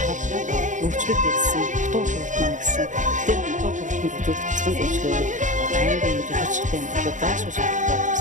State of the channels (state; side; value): late; left; 0.36 ms